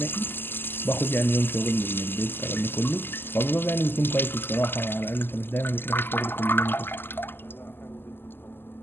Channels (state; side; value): late; right; 0.099 ms